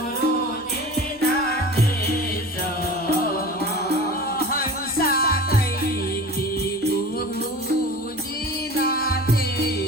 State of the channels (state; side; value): normal; both; correlation 0.37